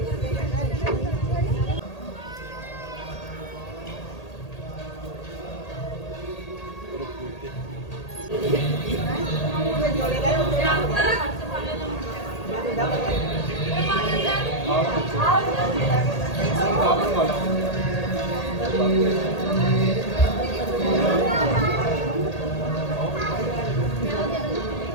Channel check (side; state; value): right; late; 1.8 ms